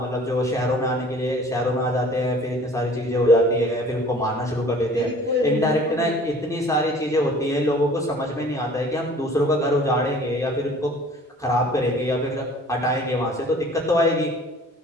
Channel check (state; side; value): normal; both; correlation 0.49